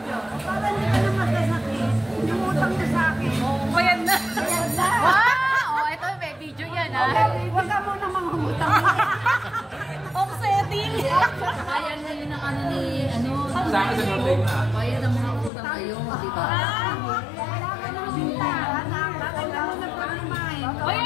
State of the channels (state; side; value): drops out; right; at 15.5 s